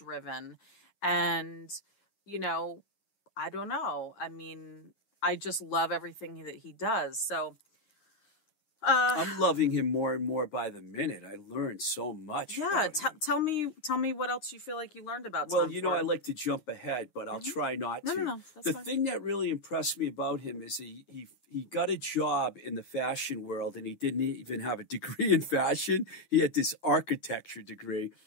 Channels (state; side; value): late; right; 9.6 ms